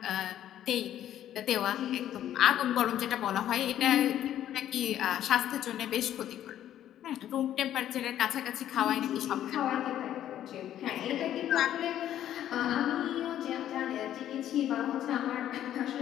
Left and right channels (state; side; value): quieter; right; 11.5 dB